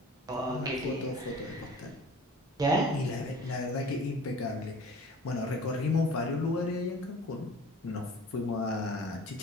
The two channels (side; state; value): both; normal; correlation 0.45